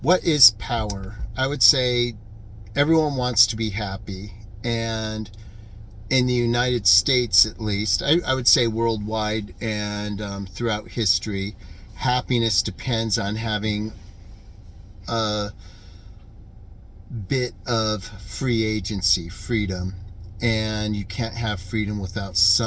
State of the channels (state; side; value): identical; both; correlation 1.00